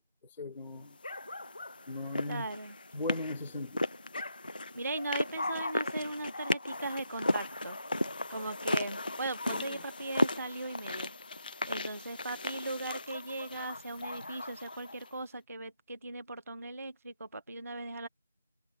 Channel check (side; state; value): both; inverted; correlation -0.79